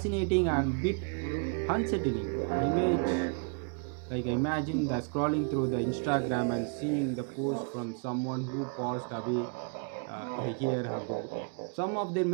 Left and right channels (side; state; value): left; quieter; 40.0 dB